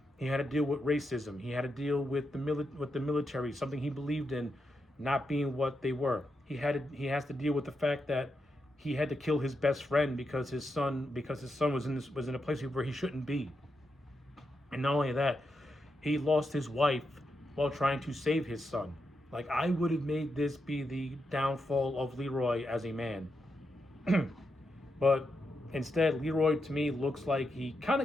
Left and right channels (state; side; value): normal; both; correlation 0.85